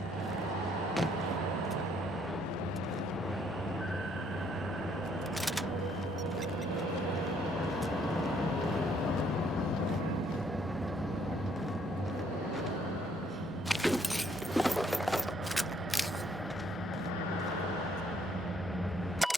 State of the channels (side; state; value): both; normal; correlation 0.67